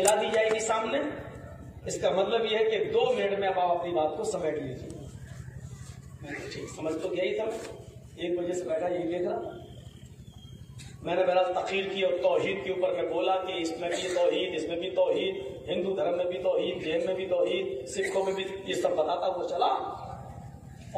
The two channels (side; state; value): both; identical; correlation 1.00